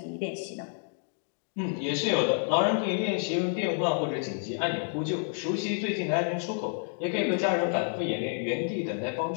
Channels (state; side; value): silent; right; 58 dB below the other